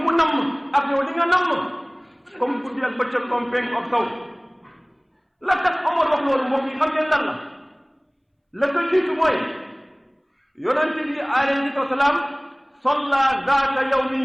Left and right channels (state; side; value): identical; both; correlation 1.00